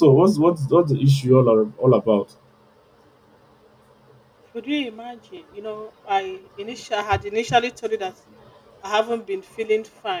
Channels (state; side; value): identical; both; correlation 1.00